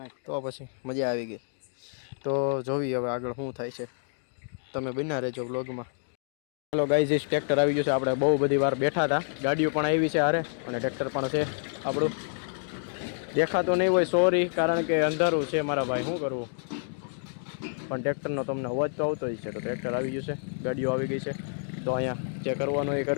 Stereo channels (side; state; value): right; silent; digital silence